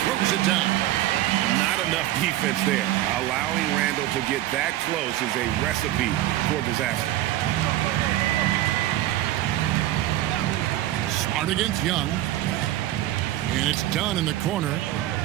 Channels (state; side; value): quieter; left; 14.4 dB